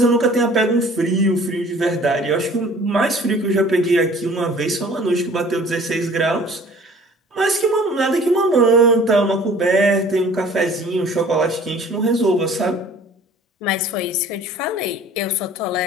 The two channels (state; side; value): normal; both; correlation 0.50